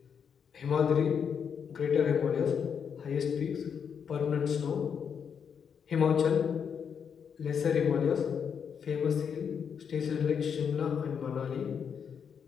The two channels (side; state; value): right; quieter; 7.1 dB